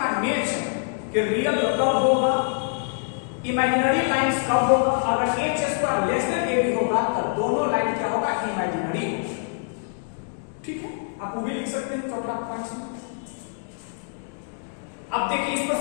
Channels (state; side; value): silent; right; digital silence